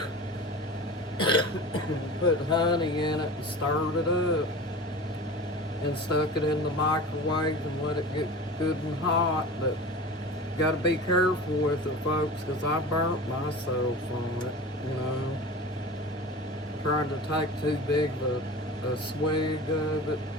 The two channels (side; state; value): both; normal; correlation 0.34